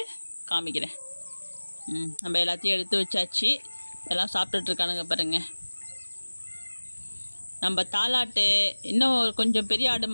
காமிக்கிறேன். நம்ம எல்லாத்தையும் எடுத்து வச்சாச்சு. எல்லாம் சாப்பிட்டுட்ருக்கானுங்க பாருங்கள். நம்ம தாலாட்டு இன்னும் கொஞ்சம் பெரிய ஆடு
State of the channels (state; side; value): inverted; both; correlation -1.00